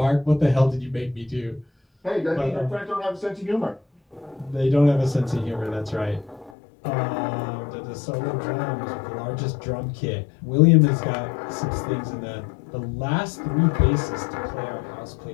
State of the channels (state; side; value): drops out; right; at 6.5 s